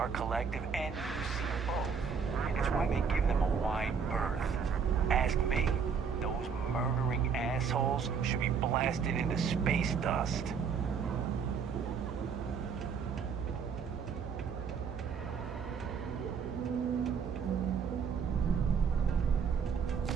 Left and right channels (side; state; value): left; quieter; 6.2 dB